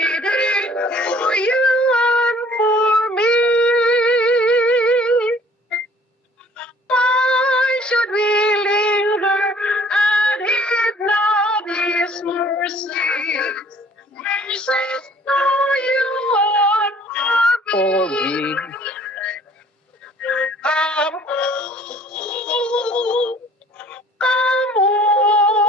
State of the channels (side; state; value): both; normal; correlation 0.55